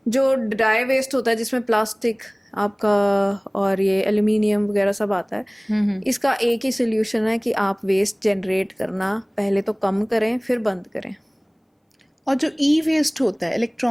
जो ड्राई वेस्ट होता है जिसमें प्लास्टिक आपका और ये एल्यूमिनियम वगैरह सब आता है, इसका एक ही सोल्यूशन है कि आप वेस्ट जनरेट करना पहले तो कम करें, फिर बंद करें। और जो ई वेस्ट होता है,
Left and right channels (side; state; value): both; identical; correlation 1.00